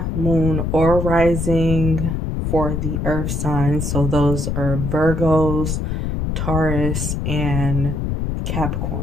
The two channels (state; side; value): noise; left; rumble, 1 dB below the sound